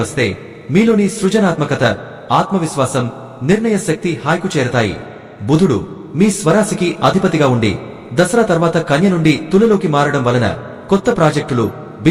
వస్తే మీలోని సృజనాత్మకత, ఆత్మవిశ్వాసం, నిర్ణయ శక్తి హాయికు చేరతాయి. బుధుడు మీ స్వరాశికి అధిపతిగా ఉండి దసరా తర్వాత కన్య నుండి తులలోకి మారడం వలన కొత్త ప్రాజెక్టులు,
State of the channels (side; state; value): both; identical; correlation 1.00